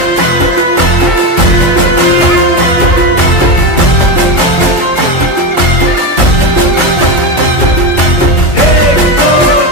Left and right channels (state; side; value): late; right; 2.5 ms